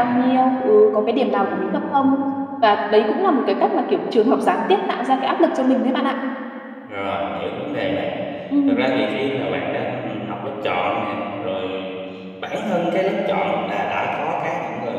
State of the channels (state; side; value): identical; both; correlation 1.00